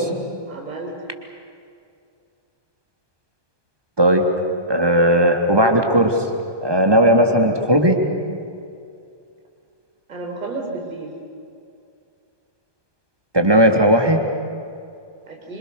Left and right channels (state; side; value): late; left; 1.2 ms